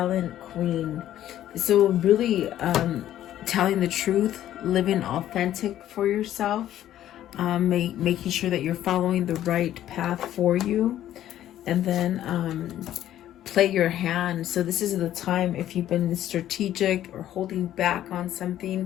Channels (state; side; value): quieter; right; 12.3 dB